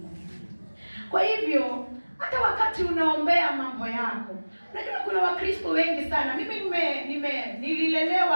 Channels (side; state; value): both; inverted; correlation -1.00